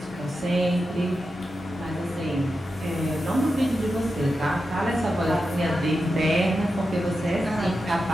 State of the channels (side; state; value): both; normal; correlation 0.89